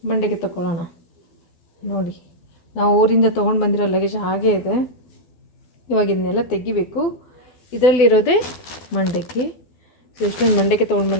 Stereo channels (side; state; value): right; late; 12 ms